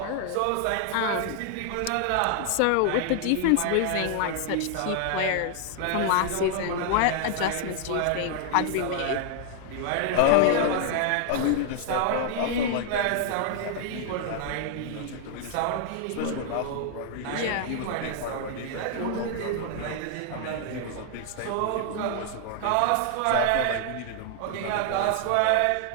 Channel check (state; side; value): different; both; correlation 0.00